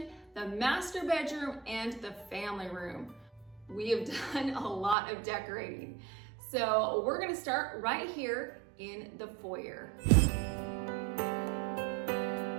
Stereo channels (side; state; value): left; drops out; at 5.0 s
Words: the master bedroom, and the family room. We have done a lot of decorating. So we're gonna start right here in the foyer.